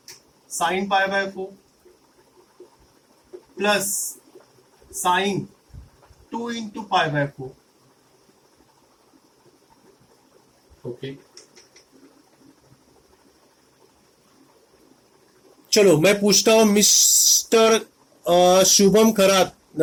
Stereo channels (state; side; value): identical; both; correlation 1.00